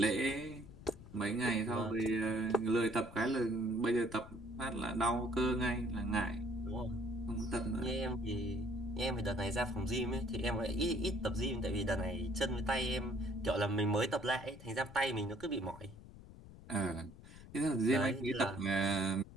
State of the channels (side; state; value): left; noise; rumble, 17 dB below the sound